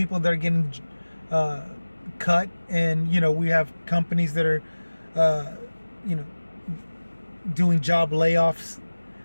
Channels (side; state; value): both; inverted; correlation -1.00